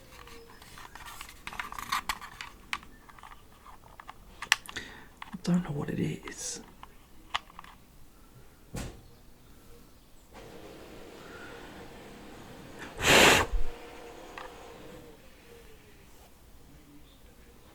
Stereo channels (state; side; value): identical; both; correlation 1.00